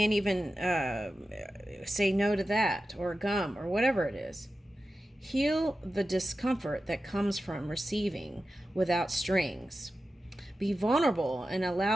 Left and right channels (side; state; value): both; normal; correlation 0.92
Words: even say no to that, or gum, or whatever it is. Heal the discomfort that comes from receiving without strings. Be vulnerable and